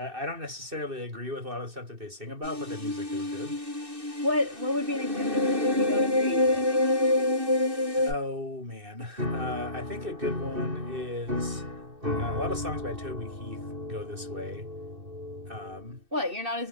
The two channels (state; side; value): late; left; 2.6 ms